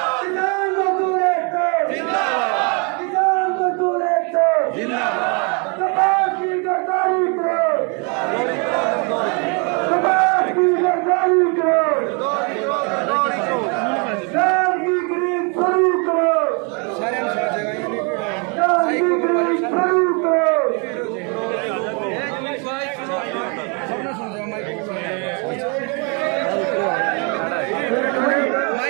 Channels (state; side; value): quieter; left; 34.2 dB